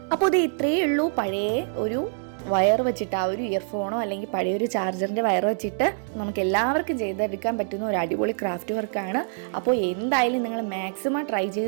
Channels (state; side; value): silent; left; digital silence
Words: അപ്പോൾ ഇത് ഇത്രയേ ഉള്ളൂ. പഴയ ഒരു വയർ വെച്ചിട്ട്, ആ ഒരു ഇയർഫോണോ അല്ലെങ്കിൽ പഴയൊരു ചാർജറിൻ്റെ വയർ വെച്ചിട്ട് നമുക്ക് എല്ലാവർക്കും ചെയ്തെടുക്കാൻ പറ്റുന്ന ഒരു അടിപൊളി ക്രാഫ്റ്റ് വർക്കാണ്. അപ്പോൾ എന്തായാലും നിങ്ങൾ മാക്സിമം ട്രൈ